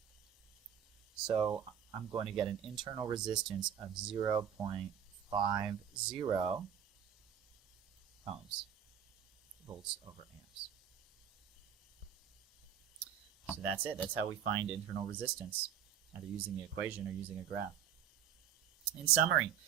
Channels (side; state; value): left; quieter; 8.9 dB